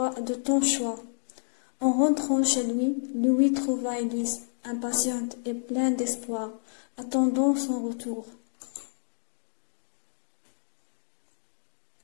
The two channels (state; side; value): silent; right; digital silence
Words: ton choix. En rentrant chez lui, Louis trouva Élise, impatiente et pleine d'espoir, attendant son retour.